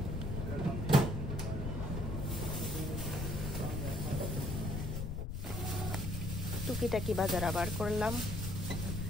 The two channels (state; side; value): noise; left; rumble, 4 dB below the sound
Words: টুকিটাকি বাজার আবার করলাম।